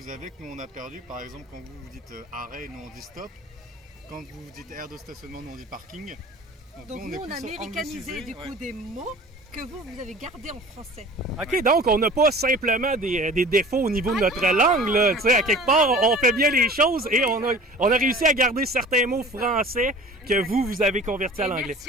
avez que nous on a perdues. Par exemple, quand vous dites arrêt, nous on dit stop. Quand vous dites aire de stationnement, nous on dit parking. Donc nous on a américanisé du coup des mots que vous avez gardés en français. OK, donc on n'a pas simplement des défauts au niveau de notre langue. Là. À quelque part, on fait bien les choses et on a réussi à garder certains mots français que vous avez convertis à l'anglais.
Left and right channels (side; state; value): both; normal; correlation 0.43